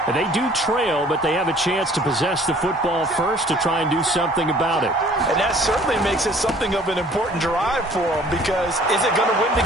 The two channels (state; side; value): normal; both; correlation 0.54